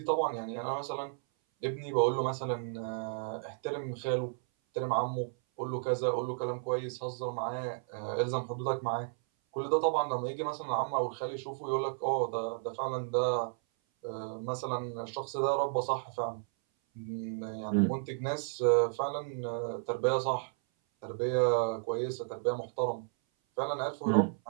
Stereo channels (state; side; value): silent; left; 56 dB below the other